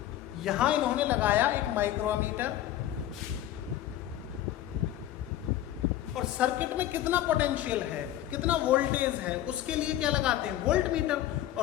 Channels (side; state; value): right; quieter; 12.9 dB